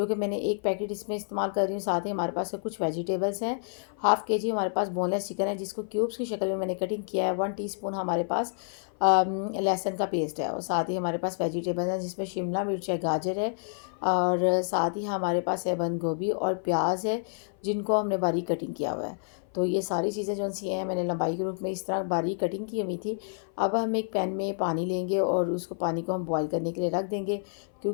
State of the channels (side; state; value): right; silent; 55 dB below the other